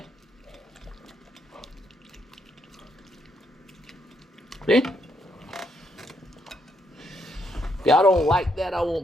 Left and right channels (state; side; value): normal; both; correlation 0.76